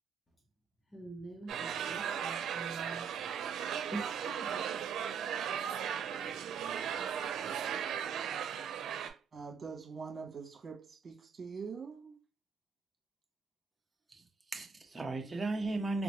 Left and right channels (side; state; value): left; quieter; 6.1 dB